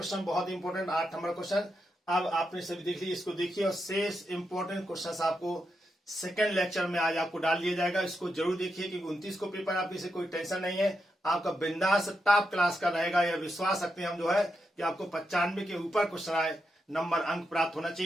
बहुत इंपॉर्टेंट 8 नंबर क्वेश्चन। अब आपने सभी देख ली, इसको देखिए, और शेष इंपॉर्टेंट क्वेश्चन आपको सेकंड लेक्चर में आज आपको डाल दिया जाएगा। इसको जरूर देखिए क्योंकि 29 को पेपर, आपकी से कोई टेंशन नहीं है, आपका बिंदास टॉप क्लास का रहेगा। यह विश्वास रखते हैं हम जो है कि आपको 95 के ऊपर क्वेश्चन आए, नंबर अंक प्राप्त होना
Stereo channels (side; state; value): both; normal; correlation 0.85